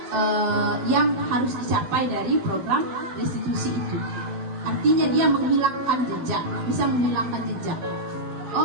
yang harus dicapai dari program restitusi itu. Artinya dia menghilangkan jejak, bisa menghilangkan jejak.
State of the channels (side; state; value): left; late; 11 ms